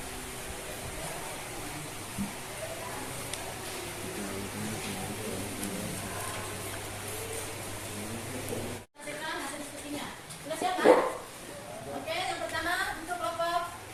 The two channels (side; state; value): both; identical; correlation 1.00